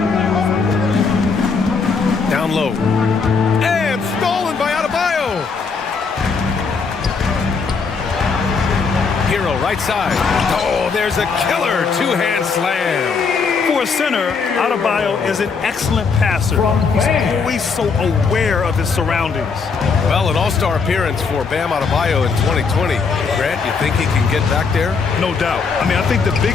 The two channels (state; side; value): quieter; right; 5.1 dB